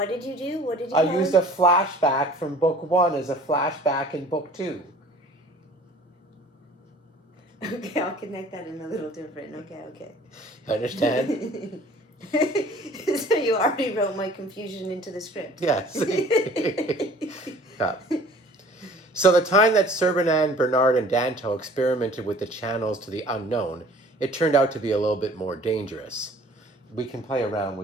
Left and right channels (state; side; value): normal; both; correlation 0.50